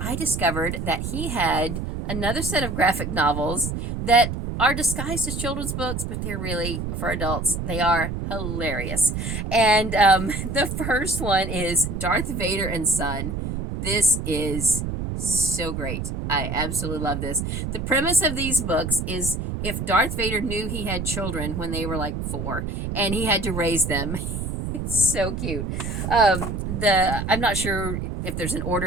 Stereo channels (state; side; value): noise; right; rumble, 4 dB below the sound